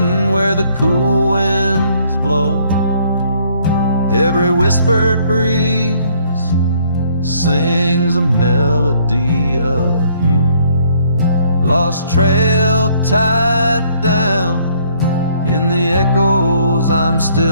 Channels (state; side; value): inverted; both; correlation -0.64